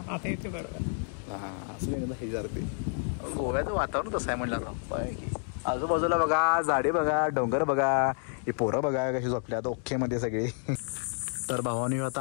आता येते बरोबर. हा असं हे जरा ते गोव्याचं वातावरण तसं आहे म्हणलं. आजूबाजूला बघा झाडे, बघा डोंगर, बघा हे पोरं बघा कशी झोपल्यात ओके मध्ये सगळे. तर भावानी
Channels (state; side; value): silent; right; 58 dB below the other